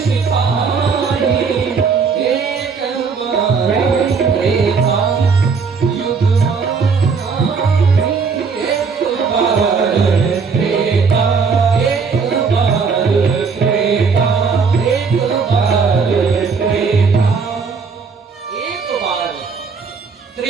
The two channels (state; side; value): quieter; left; 5.3 dB